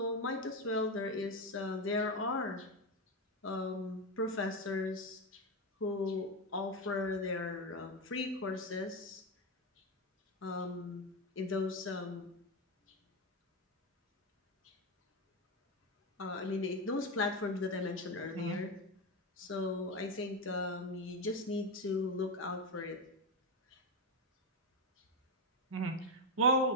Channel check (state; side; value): normal; both; correlation 0.10